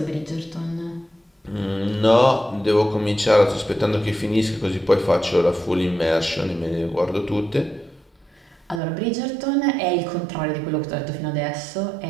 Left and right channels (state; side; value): drops out; left; at 8.8 s